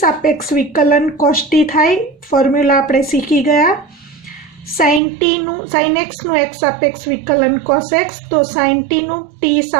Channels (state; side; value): drops out; left; at 5.0 s